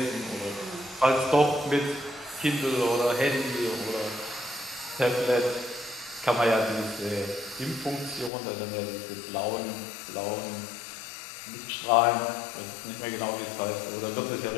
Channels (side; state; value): right; drops out; at 8.3 s